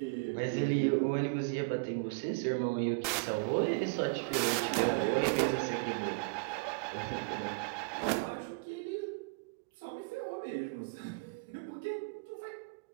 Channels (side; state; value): left; quieter; 31.8 dB